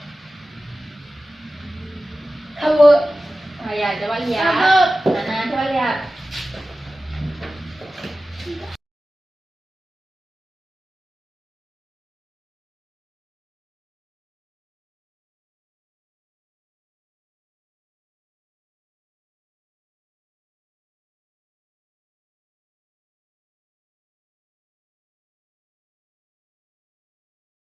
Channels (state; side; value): normal; both; correlation 0.95